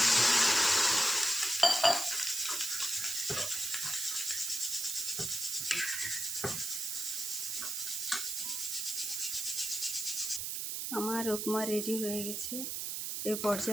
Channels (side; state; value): right; noise; hiss, 3 dB below the sound